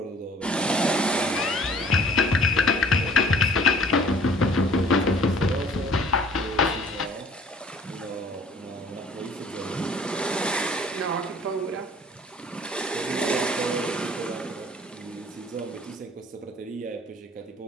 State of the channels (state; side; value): normal; both; correlation 0.53